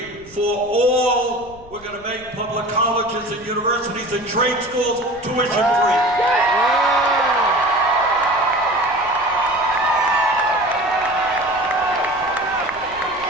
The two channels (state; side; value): noise; left; rumble, 22 dB below the sound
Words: for all, we're going to make public colleges and universities and trade schools tuition free.